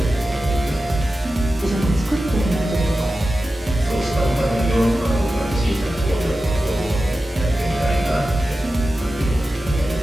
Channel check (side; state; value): both; normal; correlation 0.93